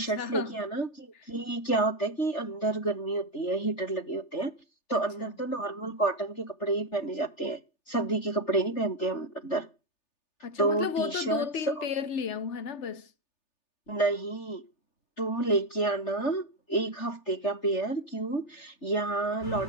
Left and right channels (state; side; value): late; right; 3.4 ms